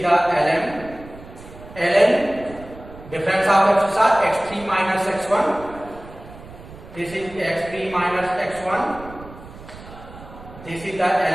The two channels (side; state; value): right; noise; rumble, 17 dB below the sound